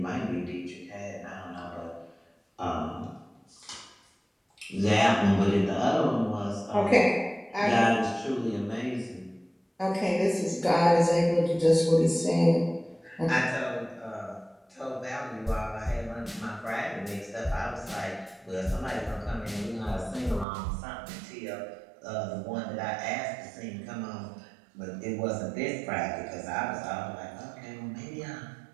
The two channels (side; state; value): left; drops out; at 20.5 s